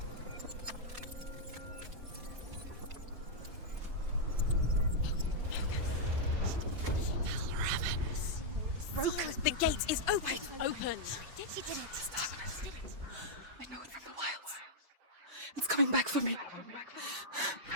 Broke. The gate is open. Open. She did it. I know it from the wilds. It's coming back for me.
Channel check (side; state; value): left; late; 5.1 ms